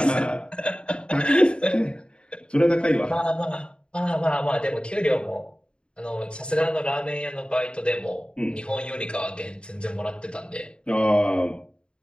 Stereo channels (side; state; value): right; late; 0.053 ms